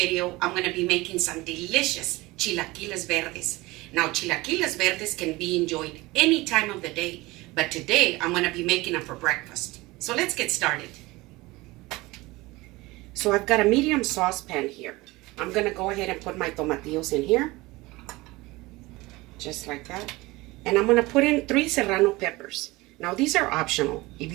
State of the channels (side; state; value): left; quieter; 21.2 dB